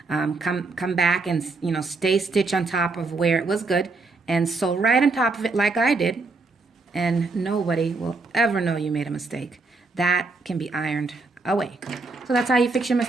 Come back and, you know, stay stitch on top of where it was good and sew right on top of it like I did. And nobody will ever know you made a mistake. That can be ironed away. So that's how you fix your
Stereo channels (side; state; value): left; quieter; 3.7 dB